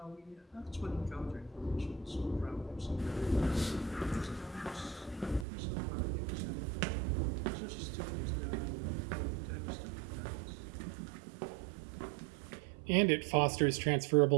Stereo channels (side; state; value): left; drops out; at 5.5 s